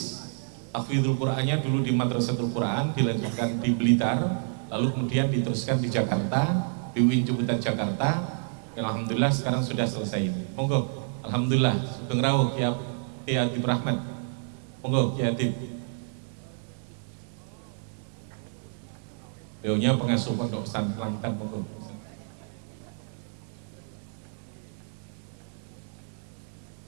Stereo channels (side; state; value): left; silent; digital silence